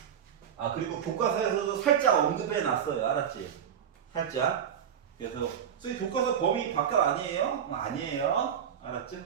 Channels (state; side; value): quieter; left; 8.6 dB